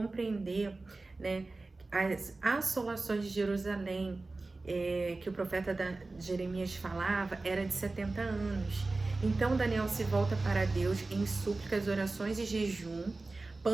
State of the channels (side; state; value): left; quieter; 3.4 dB